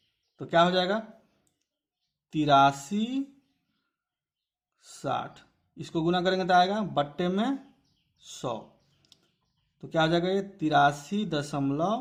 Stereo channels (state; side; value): identical; both; correlation 1.00